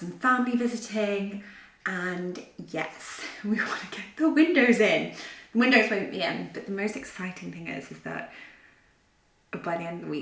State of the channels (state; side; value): identical; both; correlation 1.00